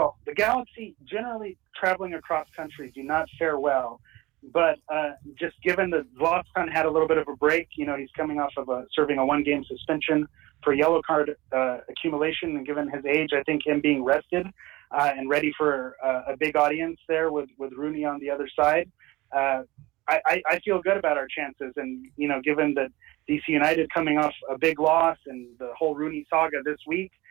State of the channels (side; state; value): left; quieter; 20.2 dB